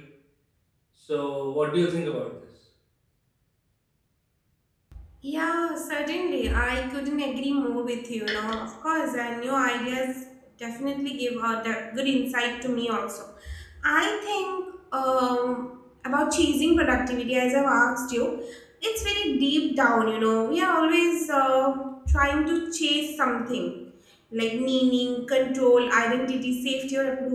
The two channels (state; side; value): identical; both; correlation 1.00